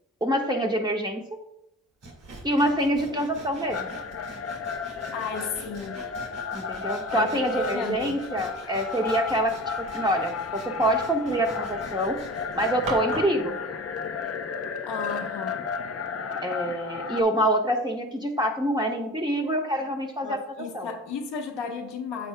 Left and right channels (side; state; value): both; normal; correlation 0.37